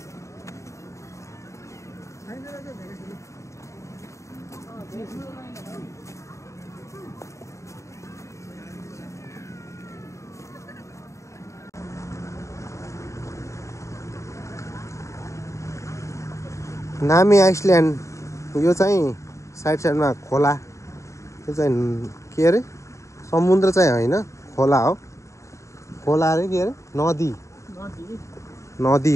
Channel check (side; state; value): right; late; 0.14 ms